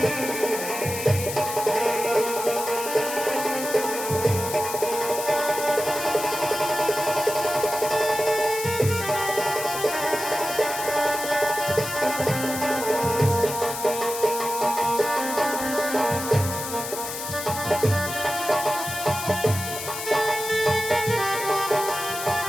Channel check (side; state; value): left; noise; hiss, 7 dB below the sound